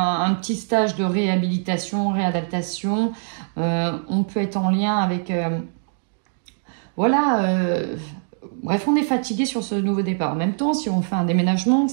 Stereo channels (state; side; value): silent; left; digital silence